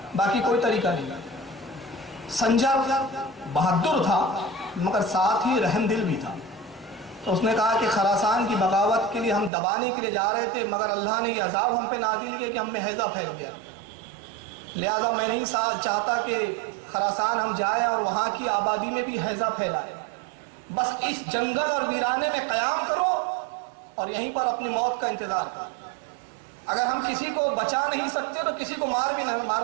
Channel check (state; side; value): drops out; left; at 9.5 s